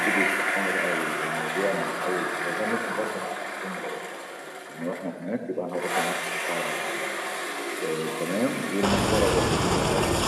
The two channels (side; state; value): both; identical; correlation 1.00